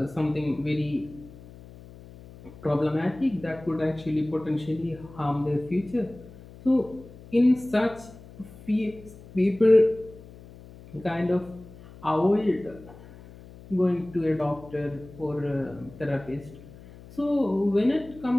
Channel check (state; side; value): noise; left; hum, 19 dB below the sound